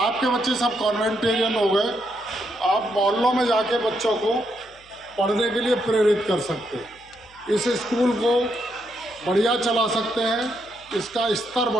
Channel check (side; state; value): left; noise; hum, 28 dB below the sound